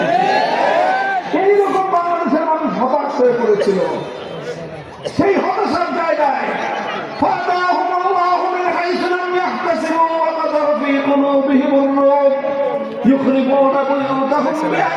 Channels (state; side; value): identical; both; correlation 1.00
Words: এইরকম বাংলাদেশের মানুষ হতাশ হয়ে পড়েছিল। সেই হতাশার জায়গায় يخربون بيوتهم